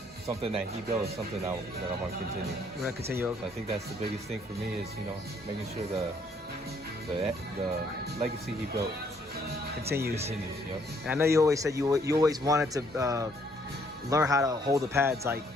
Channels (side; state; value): both; normal; correlation 0.66